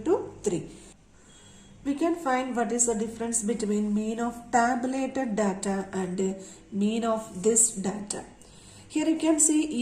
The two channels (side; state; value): both; identical; correlation 1.00